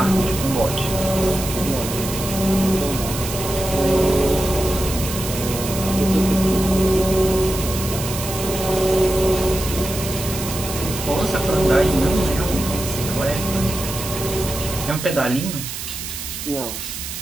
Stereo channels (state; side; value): noise; right; hiss, 7 dB below the sound